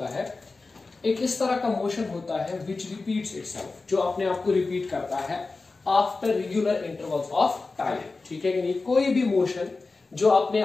है? एक इस तरह का मोशन होता है विच रिपीट्स इटसेल्फ, जो अपने आप को रिपीट करता है after regular intervals of time. ठीक है कि नहीं? कोई भी मोशन जो अपने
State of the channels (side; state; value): right; quieter; 3.8 dB